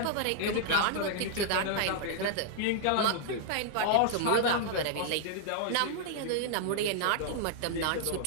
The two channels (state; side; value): different; both; correlation 0.00